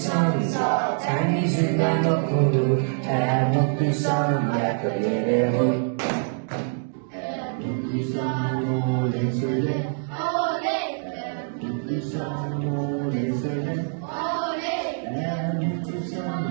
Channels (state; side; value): silent; left; digital silence